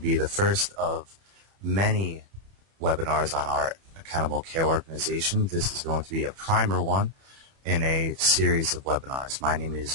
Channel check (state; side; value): late; left; 31 ms